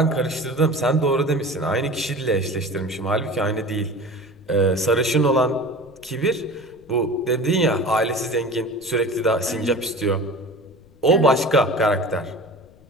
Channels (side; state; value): left; noise; rumble, 27 dB below the sound